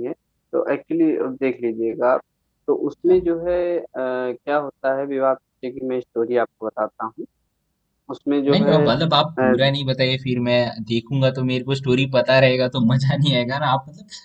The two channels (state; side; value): identical; both; correlation 1.00